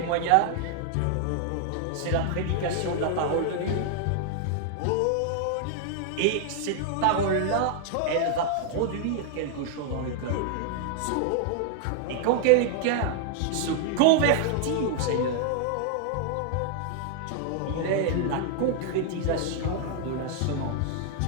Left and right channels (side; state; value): both; different; correlation 0.00